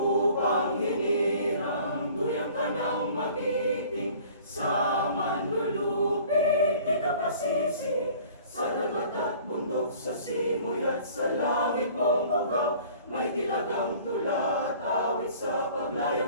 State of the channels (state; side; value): inverted; both; correlation -0.50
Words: hinirang, duyang ka ng magiting, sa manlulupig, di ka pasisi. Sa dagat at bundok, sa simoy at sa langit mong bugaw, may tilagang tula, awit sa